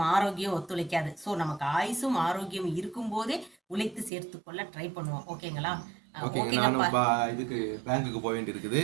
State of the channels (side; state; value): left; drops out; at 4.1 s